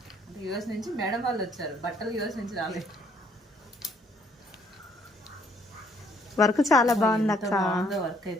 అంటే యూఎస్ నుంచి మేడం వాళ్ళు వచ్చారు, బట్టలు యూఎస్ నుంచి రాలేదు. వర్క్ చాలా బాగుంది అక్క. వర్క్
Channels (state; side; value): normal; both; correlation 0.65